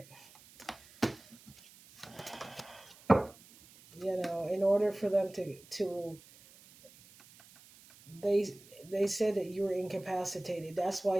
in order for them to they said that you were incapacitated. That's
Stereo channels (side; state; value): right; noise; hiss, 23 dB below the sound